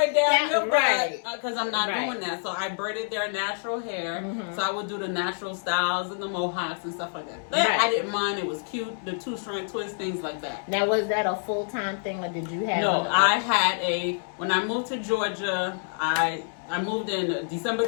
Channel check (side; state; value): right; silent; 60 dB below the other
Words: down your right. butt, because I'm not doing that. So I braided their natural hair. So I would do the natural styles and the mohawks and stuff like that. That I didn't mind. It was cute. The 2-strand twist, things like that. Now, was that a full-time thing, or did you have? No, I had when I moved to Georgia, I moved in December